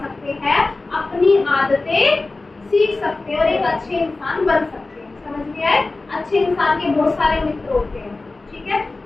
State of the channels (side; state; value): right; quieter; 3.3 dB